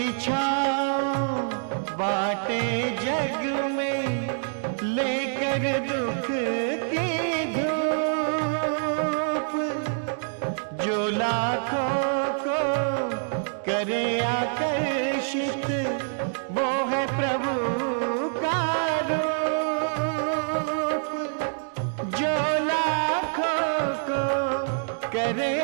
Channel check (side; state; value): left; silent; digital silence